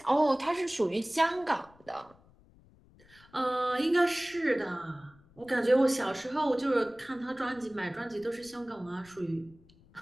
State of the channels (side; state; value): left; noise; rumble, 28 dB below the sound